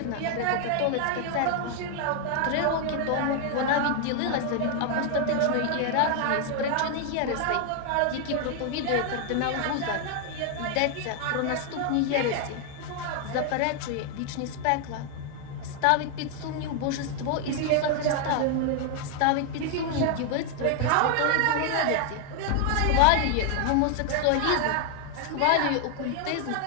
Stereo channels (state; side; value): different; both; correlation 0.00